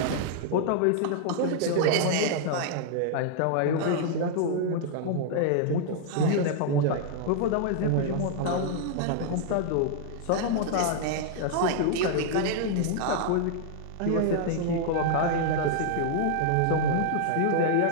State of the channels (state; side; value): different; both; correlation -0.01